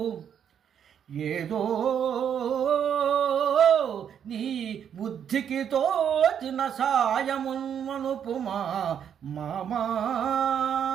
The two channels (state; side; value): quieter; left; 8.5 dB